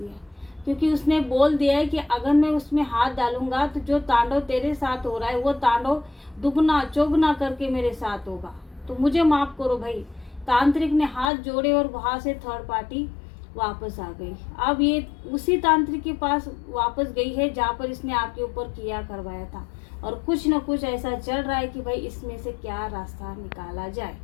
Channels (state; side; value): drops out; right; at 11.3 s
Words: क्योंकि उसने बोल दिया है कि अगर मैं उसमें हाथ डालूंगा तो जो तांडव तेरे साथ हो रहा है वो तांडव दुगना चौगुना करके मेरे साथ होगा, तो मुझे माफ करो भाई। तांत्रिक ने हाथ जोड़े और वहां से थर्ड पार्टी वापस आ गई। अब ये उसी तांत्रिक के पास वापस गई है जहाँ पर इसने आपके ऊपर किया करवाया था, और कुछ न कुछ ऐसा चल रहा है कि भाई इसमें से क्या रास्ता निकाला जाए।